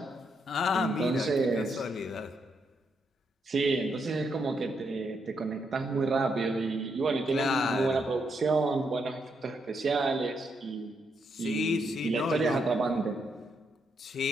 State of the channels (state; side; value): normal; both; correlation 0.79